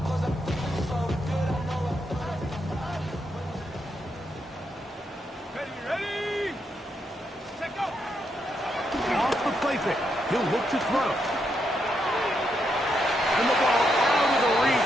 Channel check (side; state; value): both; normal; correlation 0.80